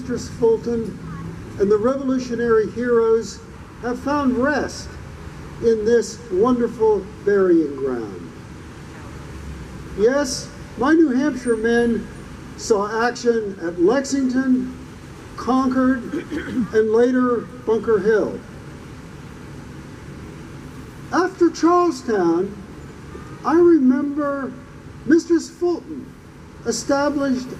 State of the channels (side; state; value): both; identical; correlation 1.00